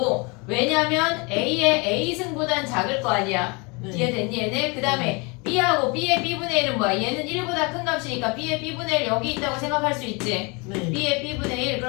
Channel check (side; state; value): right; quieter; 29.3 dB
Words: 왜냐면 A의 A승보단 작을 거 아니야. 네. 이해됐니 얘네? 그 다음에 B하고 B의 B분의 1은 뭐야? 얘는 1보다 큰 값이니까 B의 B분의 1 여기 있다고 생각할 수 있지. 네. B의 B분의 1